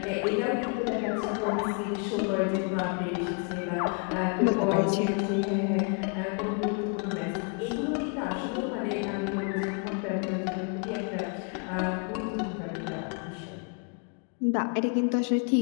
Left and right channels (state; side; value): quieter; right; 38.3 dB